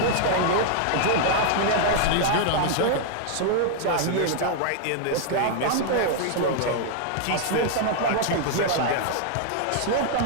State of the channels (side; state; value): both; different; correlation 0.00